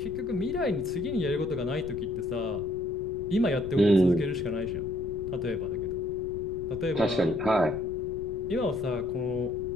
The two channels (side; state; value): left; noise; rumble, 12 dB below the sound